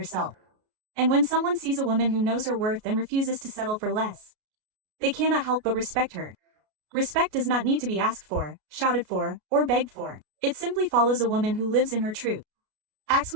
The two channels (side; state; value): left; late; 33 ms